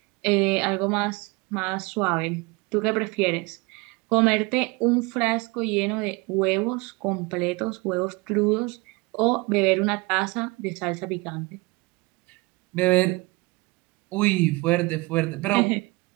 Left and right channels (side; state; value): left; quieter; 25.0 dB